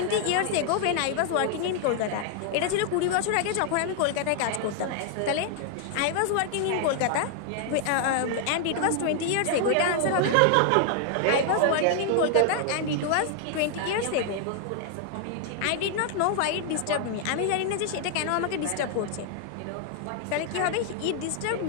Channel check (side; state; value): both; different; correlation 0.00